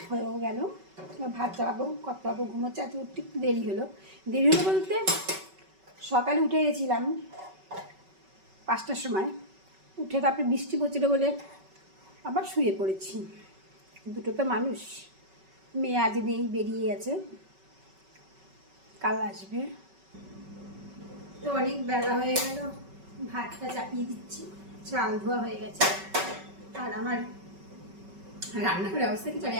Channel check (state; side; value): late; left; 5.3 ms